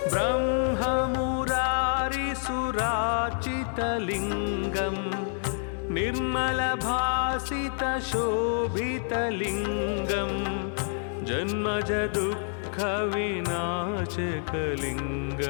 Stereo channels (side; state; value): right; silent; 59 dB below the other